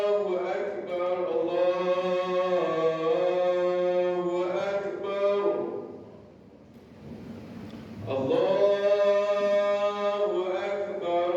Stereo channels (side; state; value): both; identical; correlation 1.00